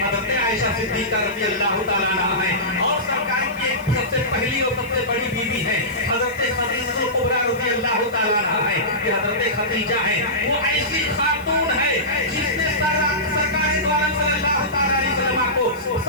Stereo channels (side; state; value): left; noise; hiss, 23 dB below the sound